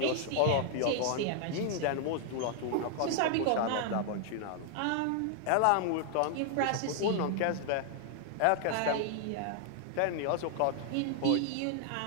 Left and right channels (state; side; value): different; both; correlation 0.00